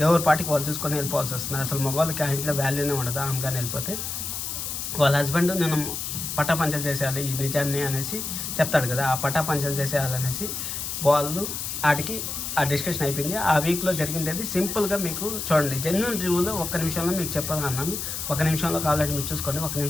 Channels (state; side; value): noise; left; hiss, 5 dB below the sound